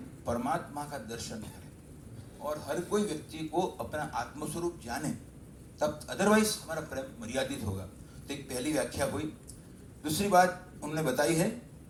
परमात्मा का दर्शन करें और हर कोई व्यक्ति को अपना आत्मस्वरूप जाने, तब अदरवाइज हमारा प्रेम मर्यादित होगा। तो एक पहली व्याख्या हुई। दूसरी बात उन्होंने बताई है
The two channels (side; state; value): both; identical; correlation 1.00